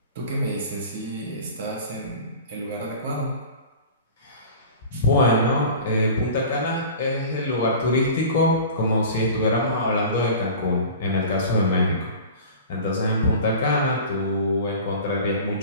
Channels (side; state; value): both; inverted; correlation -0.39